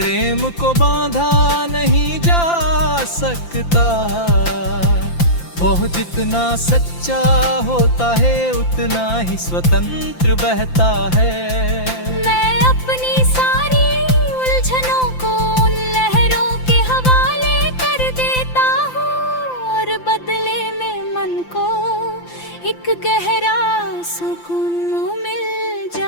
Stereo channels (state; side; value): late; right; 5.8 ms